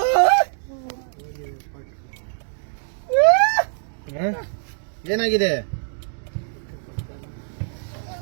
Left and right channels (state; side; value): silent; left; digital silence